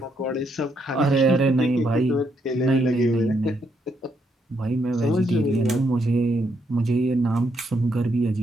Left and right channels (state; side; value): normal; both; correlation 0.76